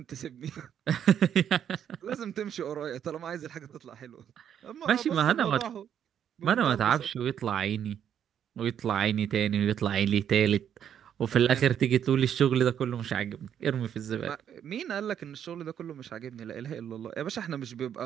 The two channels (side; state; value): left; quieter; 9.2 dB